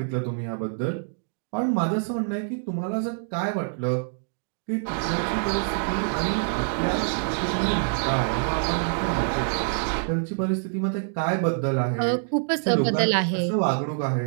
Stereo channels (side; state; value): left; silent; digital silence